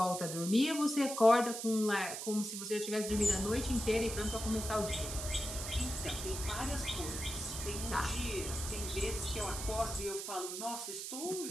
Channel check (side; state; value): right; noise; hiss, 6 dB below the sound